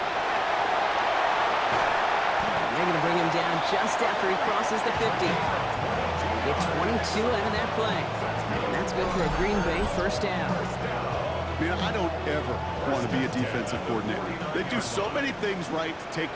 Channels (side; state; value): both; identical; correlation 1.00